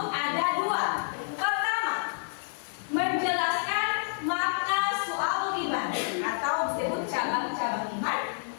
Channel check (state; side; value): silent; right; 59 dB below the other